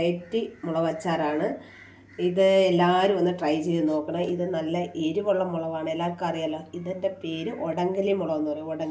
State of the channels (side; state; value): both; identical; correlation 1.00